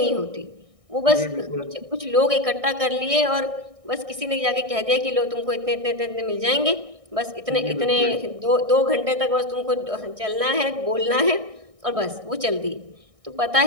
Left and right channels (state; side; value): late; left; 1.6 ms